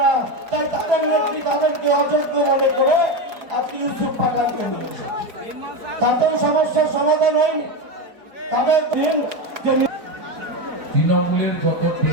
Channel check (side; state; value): left; late; 4.4 ms